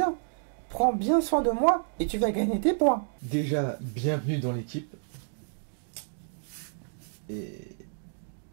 Prends bien soin de moi et tu vas gagner tes points. Déjà, bienvenue dans l'équipe.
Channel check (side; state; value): left; silent; digital silence